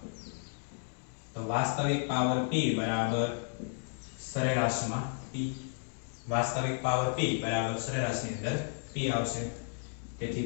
તો વાસ્તવિક પાવર p બરાબર સરેરાશમાં p વાસ્તવિક પાવર p બરાબર સરેરાશની અંદર p આવશે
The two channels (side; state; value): right; silent; 56 dB below the other